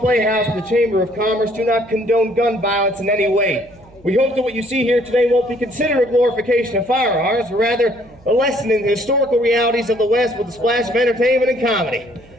and the Chamber of Commerce do not condone gun violence in any way. We hope that what you see here today won't be considered a glorification of firearms, but rather a lesson in the historical realities of the West with a splash of entertainment and comedy.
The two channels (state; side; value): noise; right; hum, 26 dB below the sound